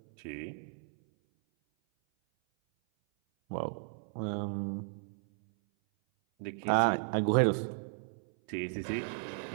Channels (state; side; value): silent; left; 55 dB below the other